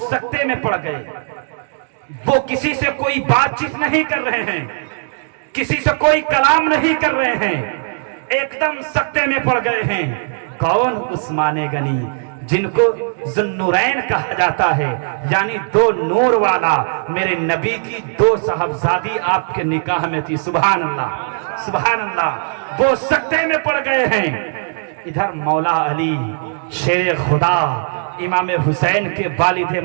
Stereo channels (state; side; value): silent; left; digital silence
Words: में पड़ गए। वो किसी से कोई बातचीत नहीं कर रहे हैं, किसी से कोई कलाम नहीं कर रहे हैं, एकदम सकते में पड़ गए हैं। कौन? उस्मान गनी, जिनको ज़ुन्नुरैन कहा जाता है, यानी दो नूर वाला। मेरे नबी की दो साहबजादी आपके निकाह में थी। सुभान अल्लाह, सुभान अल्लाह। वो सकते में पड़ गए हैं। इधर मौला अली शेर खुदा इमाम हुसैन के वालिद